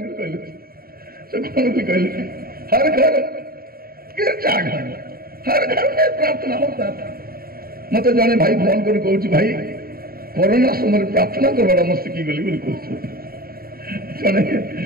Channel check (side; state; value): left; late; 0.43 ms